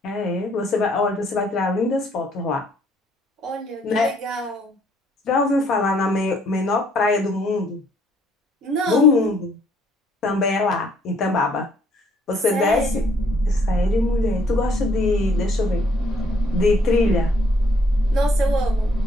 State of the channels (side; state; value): both; normal; correlation 0.65